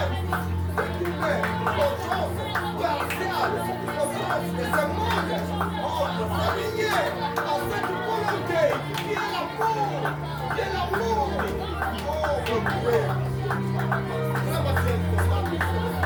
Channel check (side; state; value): both; identical; correlation 1.00